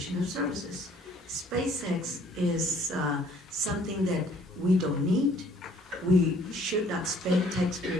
of services. SpaceX is something that we don't need. We should not spend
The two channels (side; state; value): both; normal; correlation 0.59